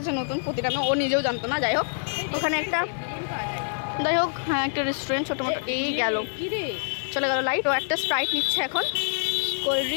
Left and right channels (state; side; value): silent; right; 61 dB below the other